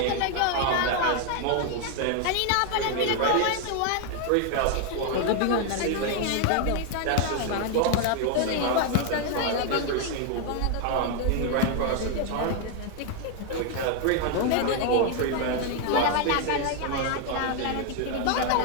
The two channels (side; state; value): both; different; correlation 0.01